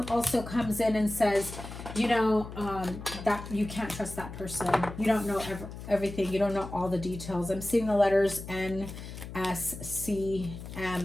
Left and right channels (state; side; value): noise; left; hum, 11 dB below the sound